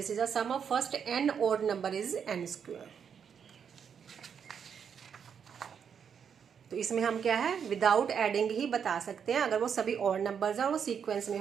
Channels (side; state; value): left; quieter; 7.3 dB